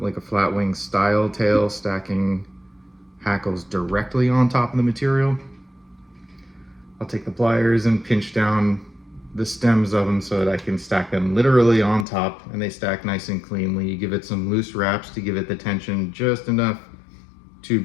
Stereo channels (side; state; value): right; drops out; at 12.1 s